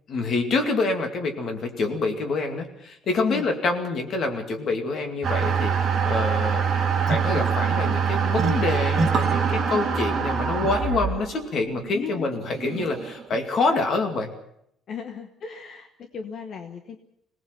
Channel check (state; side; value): normal; both; correlation 0.64